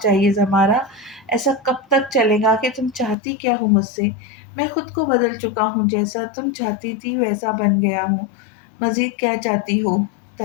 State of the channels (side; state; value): right; drops out; at 3.2 s